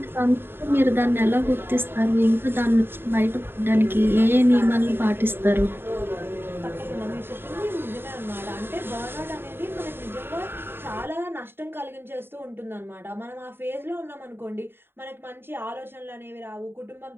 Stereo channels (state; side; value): late; left; 0.11 ms